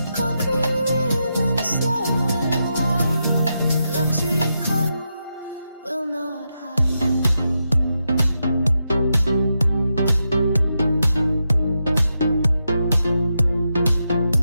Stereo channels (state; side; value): inverted; both; correlation -0.86